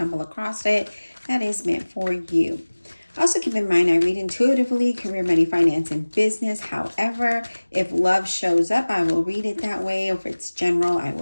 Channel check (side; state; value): both; inverted; correlation -1.00